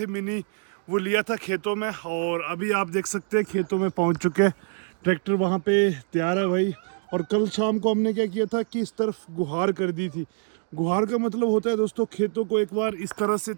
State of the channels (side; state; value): left; silent; 61 dB below the other